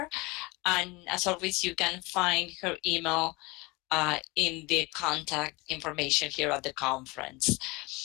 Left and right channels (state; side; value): quieter; right; 24.8 dB